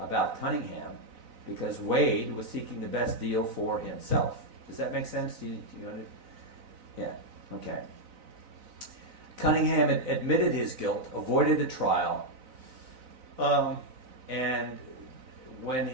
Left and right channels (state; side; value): late; left; 4.0 ms